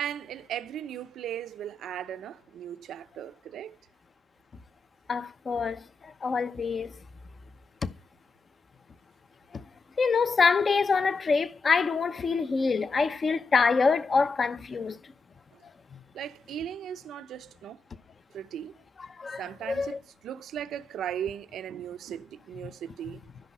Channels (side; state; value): right; quieter; 3.5 dB